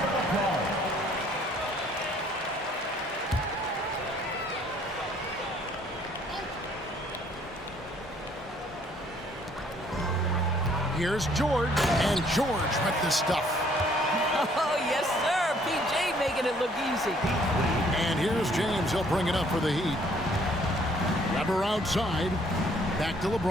of applause. Here's George, and George with the stuff. Oh, yes, sir. PJ making it look easy. And here's James. He'll bring it up for the Heat. Weber outside. Back to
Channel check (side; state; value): both; normal; correlation 0.62